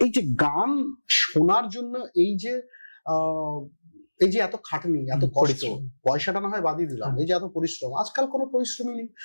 যে গান শোনার জন্য এই যে এত খাটনি, এত কষ্ট, পয়সাটা না হয় বাদই দিলাম, এই যে এত পরিশ্রম, আজকাল কোনো পরিশ্রমই নেই।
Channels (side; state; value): both; inverted; correlation -1.00